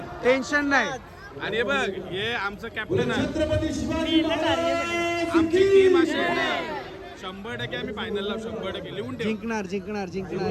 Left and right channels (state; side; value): identical; both; correlation 1.00